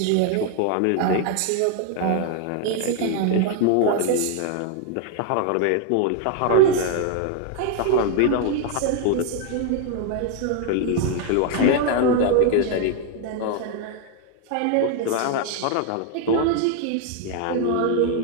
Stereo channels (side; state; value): both; different; correlation 0.00